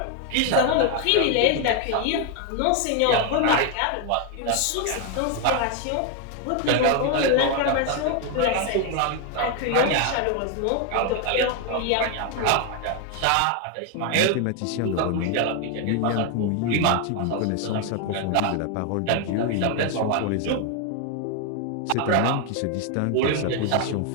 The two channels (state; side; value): different; both; correlation 0.01